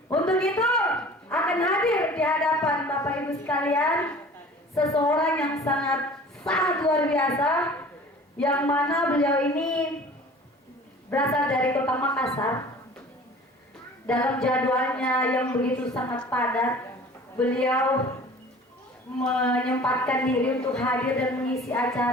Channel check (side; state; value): both; normal; correlation 0.45